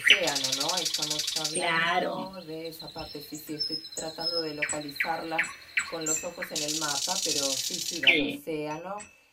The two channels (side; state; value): both; identical; correlation 1.00